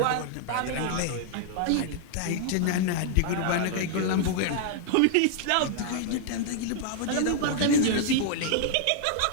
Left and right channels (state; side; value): different; both; correlation -0.01